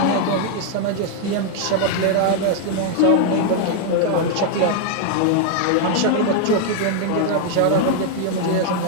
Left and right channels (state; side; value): different; both; correlation 0.00